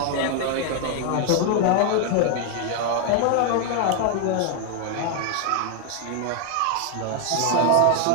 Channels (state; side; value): different; both; correlation 0.00